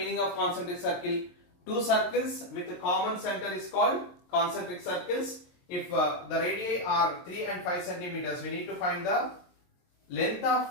of concentric circle? Two circles with a common center is called concentric circles. If the radii are 3 and 5 centimeters, we need to find the length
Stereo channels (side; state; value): right; late; 23 ms